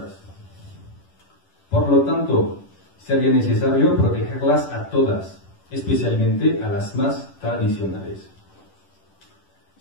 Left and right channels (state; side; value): late; right; 10 ms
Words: Por lo tanto, sería necesario protegerlas a todas, especialmente a las más tradicionales.